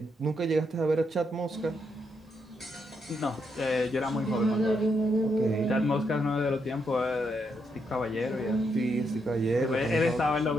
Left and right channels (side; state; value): both; normal; correlation 0.79